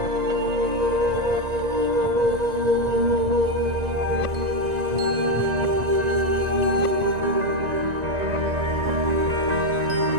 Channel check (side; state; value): left; late; 1.9 ms